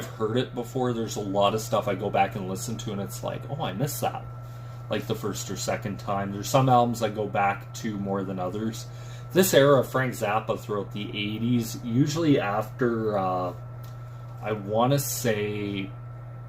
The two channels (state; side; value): identical; both; correlation 1.00